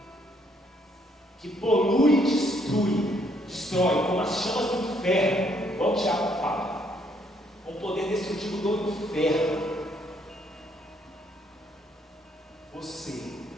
que polui e destrói como as chamas do inferno, igual o Tiago fala, com o poder destrutivo do inferno. Você.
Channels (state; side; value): normal; both; correlation 0.69